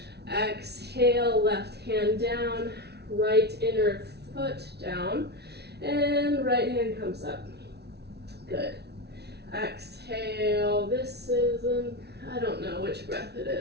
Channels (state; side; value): late; left; 0.49 ms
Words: Exhale, left hand down, right inner foot down, and right hand comes up. Good. Exhale, this is I don't know which breath it